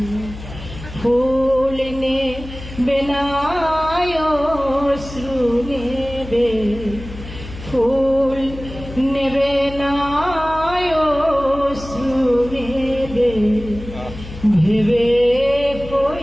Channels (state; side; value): noise; left; hum, 13 dB below the sound